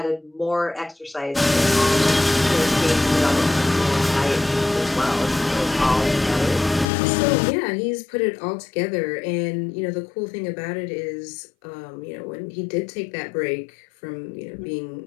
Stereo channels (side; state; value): right; drops out; at 6.9 s